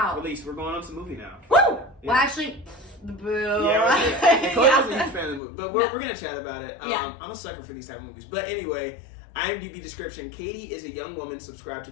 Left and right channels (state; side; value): drops out; right; at 5.4 s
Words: Release. We're going on to the movie now. Woo! Yeah. Well, actually, boo. Yeah, Chloe wasn't a Yeah. huge fan of the movie, but we're gonna chat about it. Yeah. I'm a sucker for these type of movies. But anyway, IMDb description: Katie is a young woman subscribed to